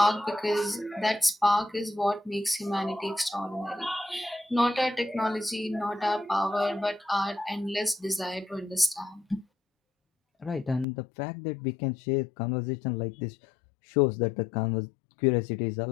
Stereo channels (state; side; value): drops out; right; at 10.9 s